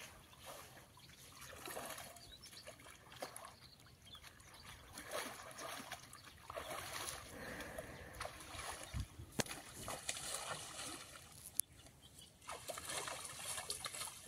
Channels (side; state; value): both; identical; correlation 1.00